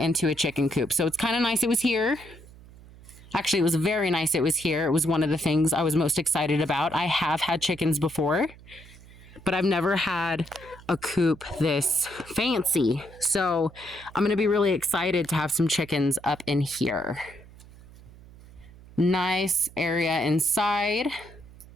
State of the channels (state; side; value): noise; right; hum, 21 dB below the sound